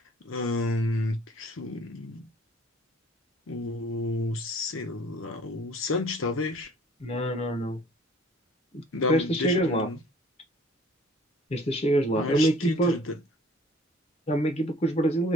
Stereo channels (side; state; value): both; normal; correlation 0.53